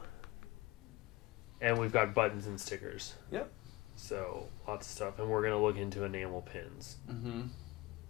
And we've got buttons and stickers. Yep. So lots of stuff, and we're gonna look into enamel pins. Mm-hmm.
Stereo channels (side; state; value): right; quieter; 20.7 dB